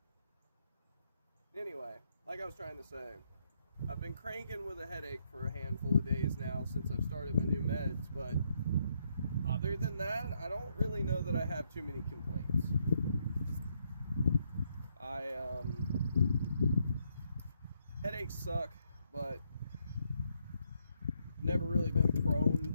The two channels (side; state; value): both; inverted; correlation -0.75